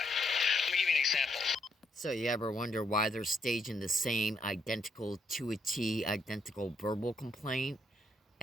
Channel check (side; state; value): both; normal; correlation 0.75